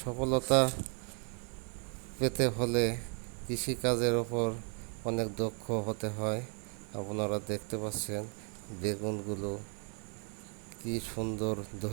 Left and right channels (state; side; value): quieter; left; 39.1 dB